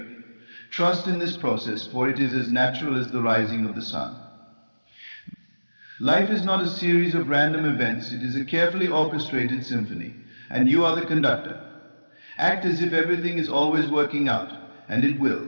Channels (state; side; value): inverted; both; correlation -1.00